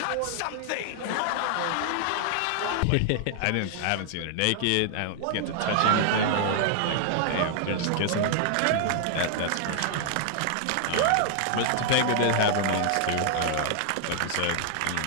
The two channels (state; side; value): different; both; correlation -0.01